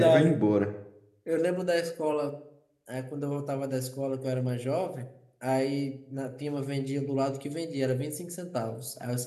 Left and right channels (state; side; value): identical; both; correlation 1.00